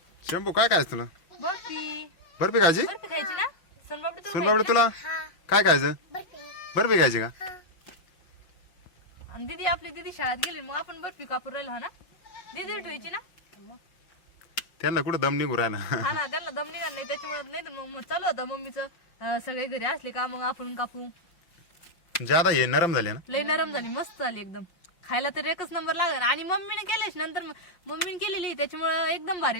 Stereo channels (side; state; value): right; late; 5.8 ms